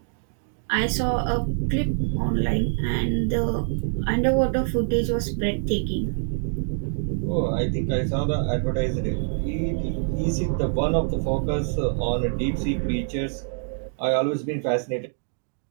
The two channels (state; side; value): silent; left; digital silence